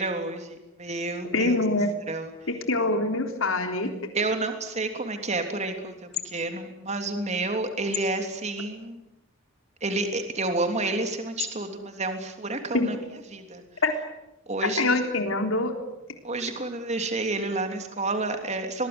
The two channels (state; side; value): normal; both; correlation 0.14